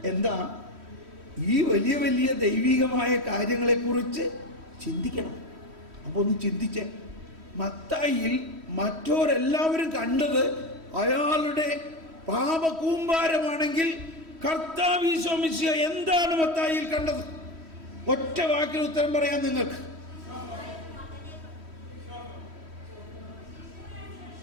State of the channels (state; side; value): late; left; 3.1 ms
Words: എന്താ? ഈ വലിയ വലിയ ദൈവികമായ കാര്യങ്ങളെക്കുറിച്ച് ചിന്തിക്കണം. അപ്പോൾ ഒന്ന് ചിന്തിച്ചേ, മത്തായിയിൽ മറ്റോരെല്ലാവരും കണ്ടത് അയാളുടെ പാപകൂമ്പാരമാണെങ്കിൽ കർത്താവ് ഈശോ മിശിഹ എന്താണ് മത്തായിയിൽ കണ്ടത്? ഒറ്റ വാക്കിൽ ഉത്തരം പറയാൻ നിങ്ങൾക്ക്.